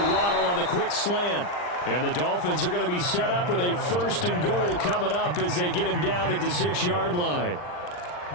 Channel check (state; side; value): late; right; 39 ms